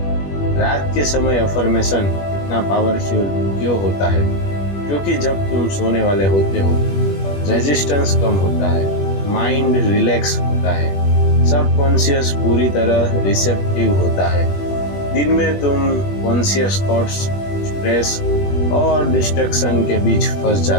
रात के समय अफर्मेशन इतना पावरफुल क्यों होता है? क्योंकि जब तुम सोने वाले होते हो रेजिस्टेंस कम होता है, माइंड रिलैक्स होता है, सबकॉन्शियस पूरी तरह रिसेप्टिव होता है। दिन में तुम कॉन्शियस थॉट्स, स्ट्रेस और डिस्ट्रैक्शन के बीच फंस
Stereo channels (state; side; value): late; right; 21 ms